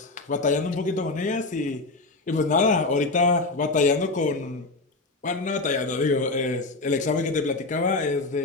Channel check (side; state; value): right; quieter; 3.3 dB